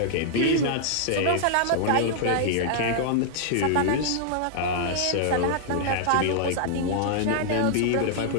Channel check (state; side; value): different; both; correlation -0.01